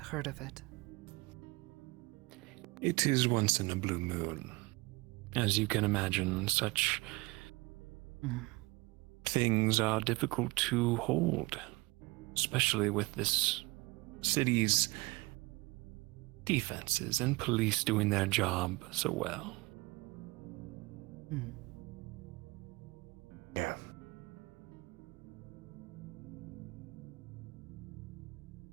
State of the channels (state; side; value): quieter; left; 23.7 dB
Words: of it. It is once in a blue moon. As you can imagine, such things are difficult to hold, especially with this city's defenses and police doing their job so well. Yeah.